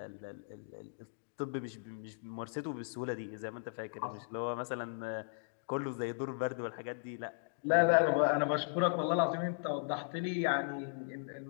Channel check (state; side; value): silent; right; digital silence